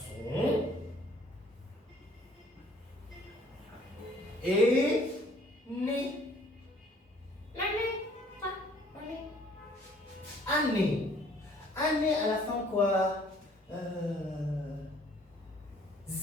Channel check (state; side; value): normal; both; correlation 0.59